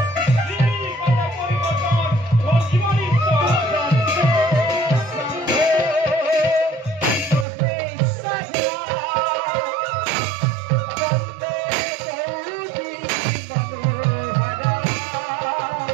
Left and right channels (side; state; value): left; drops out; at 7.5 s